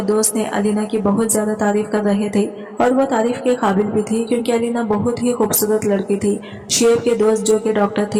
दोस्त ने अलीना की बहुत ज्यादा तारीफ कर रहे थे और वो तारीफ के काबिल भी थी क्योंकि अलीना बहुत ही खूबसूरत लड़की थी। शुएब के दोस्त जो कि डॉक्टर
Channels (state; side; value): identical; both; correlation 1.00